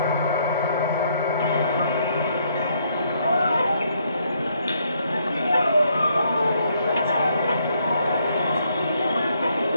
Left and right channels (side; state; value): both; inverted; correlation -0.71